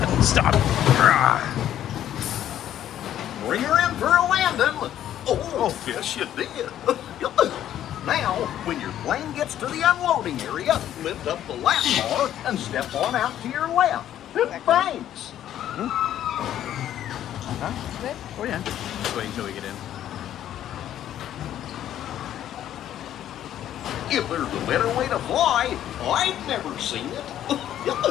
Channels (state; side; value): quieter; right; 11.4 dB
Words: stop. Bring her in for a landing. Oh, yes, you did. Now, when your plane gets to the unloading area, lift up the lap bar and step on out to your left. Thanks. Huh? Good. Oh yeah. Just wait until we get in. If there's a better way to fly, I've never seen it.